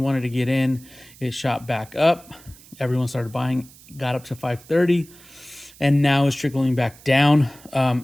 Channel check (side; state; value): right; noise; hiss, 23 dB below the sound